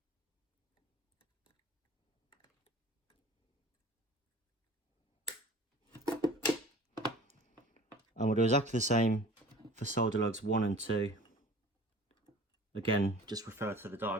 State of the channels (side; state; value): both; normal; correlation 0.43